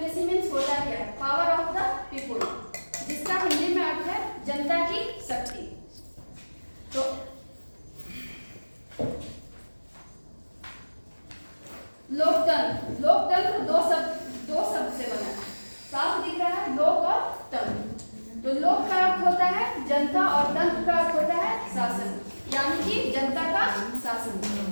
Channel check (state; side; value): inverted; both; correlation -1.00